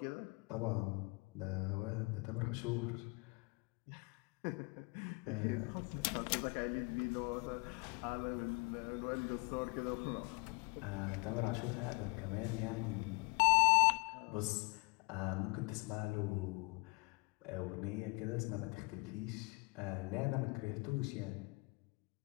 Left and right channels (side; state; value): right; quieter; 29.5 dB